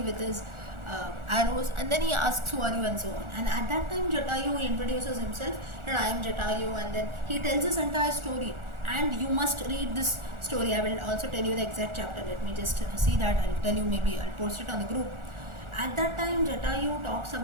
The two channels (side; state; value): left; late; 1.4 ms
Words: with his arrows, and then he asks who are you and so on. And at that time Jatayu introduces himself that I am Jatayu, and then he tells his entire story. And you must read this story. I will also tell you the exact chapter. Let me just see that. I'll tell you, maybe I'll post it on the group. At that time Jatayu talks